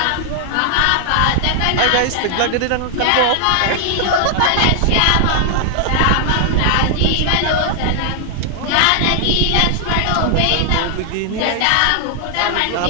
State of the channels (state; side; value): different; both; correlation 0.00